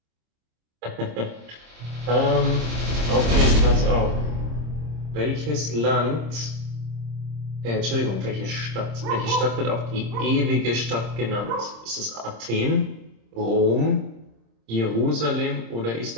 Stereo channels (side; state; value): left; late; 26 ms